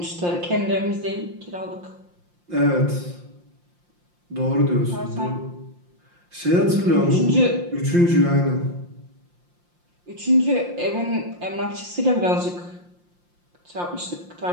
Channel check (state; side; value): late; left; 5.7 ms